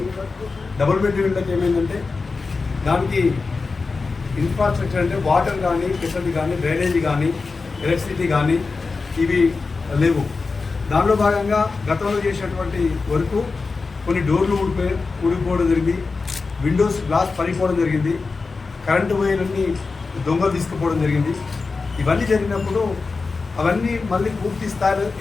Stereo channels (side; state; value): right; quieter; 4.2 dB